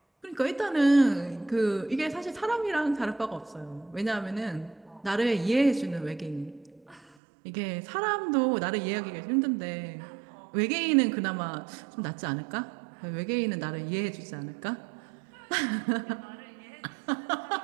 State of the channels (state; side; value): drops out; left; at 7.1 s